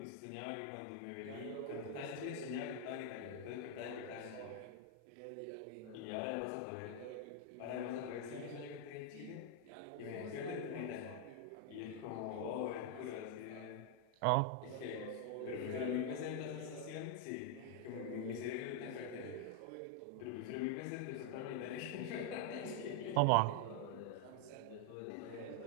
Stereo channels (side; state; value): both; different; correlation 0.00